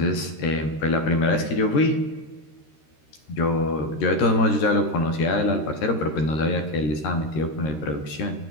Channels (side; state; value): right; late; 13 ms